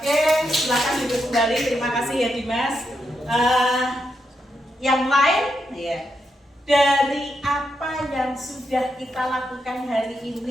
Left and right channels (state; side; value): normal; both; correlation 0.83